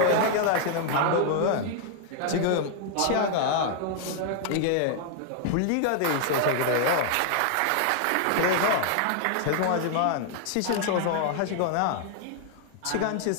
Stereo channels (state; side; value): different; both; correlation 0.00